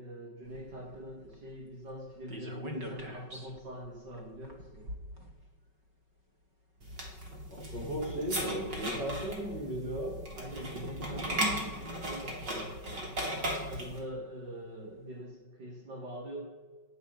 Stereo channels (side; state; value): left; late; 5.3 ms